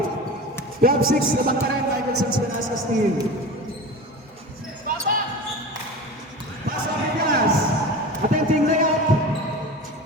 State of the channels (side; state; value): both; normal; correlation 0.32